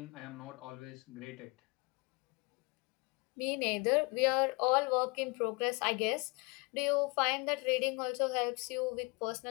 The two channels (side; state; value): right; quieter; 29.2 dB